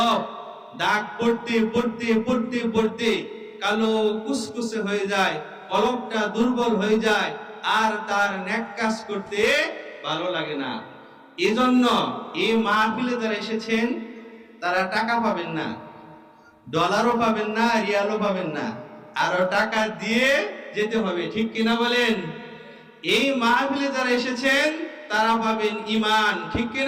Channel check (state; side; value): identical; both; correlation 1.00